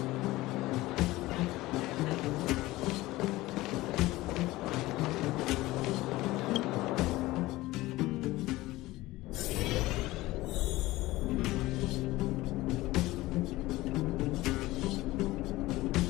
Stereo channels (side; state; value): right; quieter; 18.5 dB